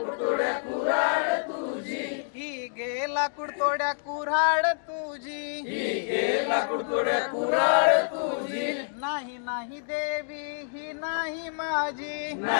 तोड्या कुऱ्हाड तुझी। ही घे लाकूड तोड्या कुऱ्हाड तुझी। ही घे लाकूड तोड्या कुऱ्हाड तुझी। नाही नाही देवी ही नाही माझी।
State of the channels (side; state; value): right; silent; digital silence